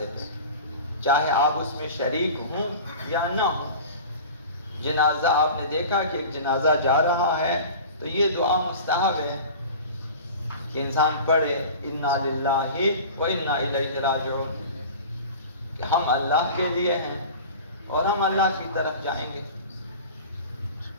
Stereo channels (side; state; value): both; inverted; correlation -0.37